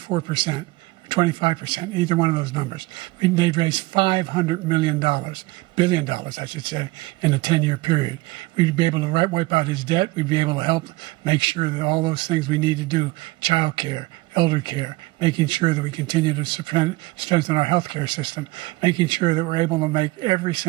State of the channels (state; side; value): quieter; left; 21.0 dB